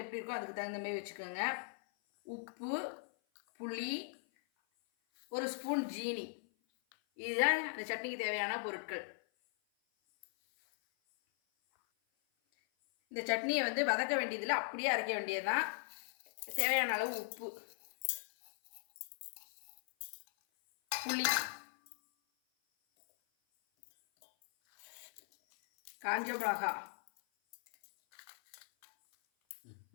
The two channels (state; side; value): silent; right; 52 dB below the other